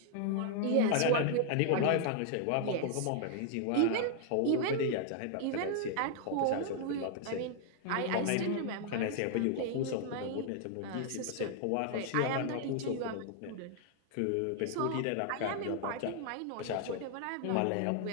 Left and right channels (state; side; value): different; both; correlation 0.00